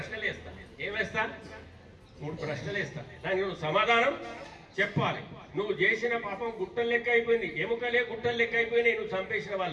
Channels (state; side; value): identical; both; correlation 1.00